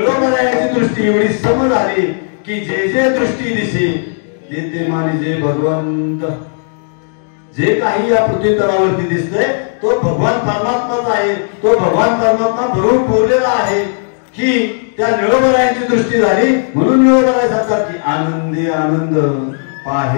दृष्टी एवढी सम झाली की जे जे दृष्टी दिसे ते मानिजे भगवंत. जे काही या पृथ्वी तलावरती दिसतंय तो भगवान परमात्माच आहे. तो भगवान परमात्मा भरून पुरलेला आहे की त्या निळोबरायांची दृष्टी झाली म्हणून निळोबराय सांगतात की आनंदी आनंद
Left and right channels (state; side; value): silent; right; digital silence